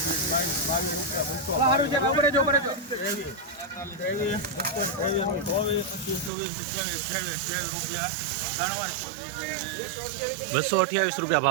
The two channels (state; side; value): drops out; left; at 6.3 s